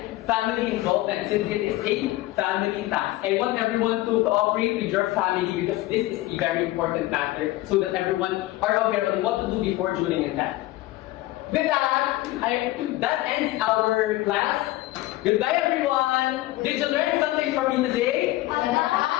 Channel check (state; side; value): quieter; right; 17.5 dB